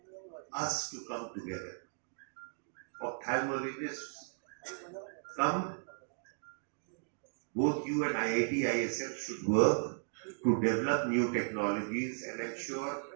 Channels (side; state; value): left; silent; digital silence